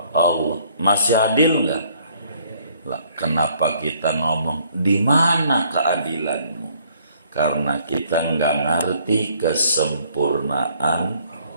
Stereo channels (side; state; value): both; inverted; correlation -0.64